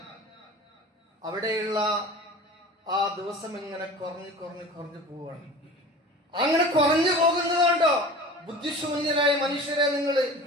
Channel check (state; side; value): normal; both; correlation 0.38